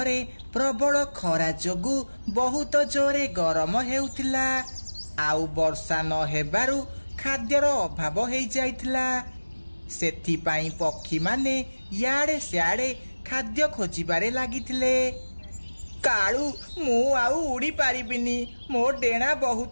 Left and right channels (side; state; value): both; inverted; correlation -1.00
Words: रे प्रबल खरा जोगु बहुत जोरे गरम हेउथिला। आउ वर्षा न हेबारु खाद्यर अभाव हेइ जाइथिला। सेथिपाई पक्षी माने याडे स्याडे खाद्य खोजिबारे लागिथिले। काळू मु आउ उड़ी पारिबिनी, मो डेणा